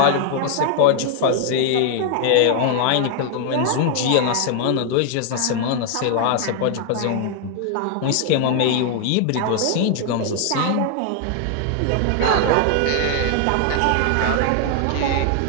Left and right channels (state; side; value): different; both; correlation 0.00